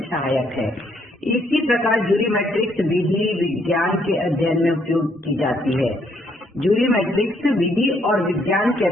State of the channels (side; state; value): both; normal; correlation 0.70